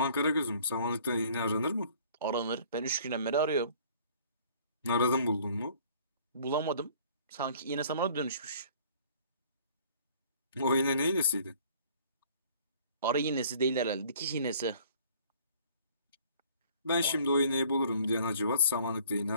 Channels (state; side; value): inverted; both; correlation -0.54